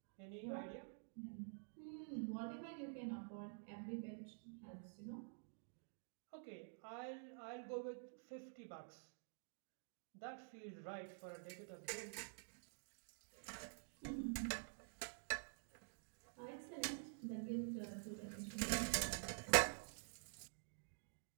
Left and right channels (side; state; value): left; silent; digital silence